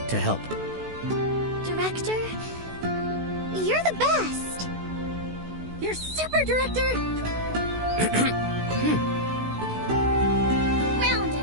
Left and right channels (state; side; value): late; left; 16 ms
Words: to help. Director, you're the best. You're super, Director! Round